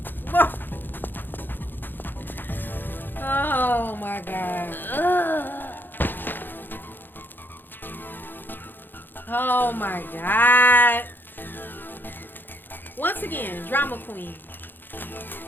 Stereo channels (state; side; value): late; right; 0.094 ms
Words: Oh my god. Oh my god. Once again, drama queen.